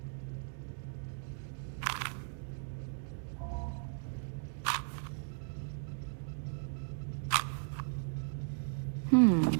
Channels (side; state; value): left; silent; digital silence